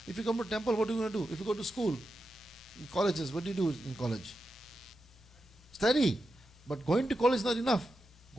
If you come to temple, what are you going to do? If you go to school, in colleges, what do you do in college? Study. But going to college is not enough.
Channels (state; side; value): normal; both; correlation 0.89